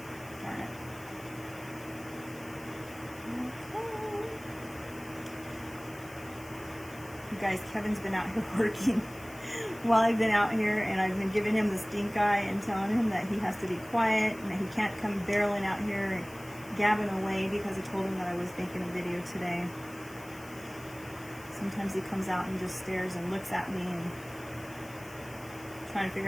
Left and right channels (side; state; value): left; noise; hiss, 20 dB below the sound